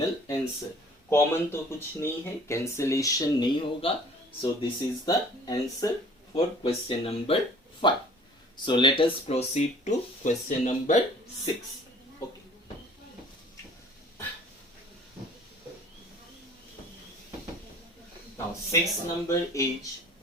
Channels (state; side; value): normal; both; correlation 0.51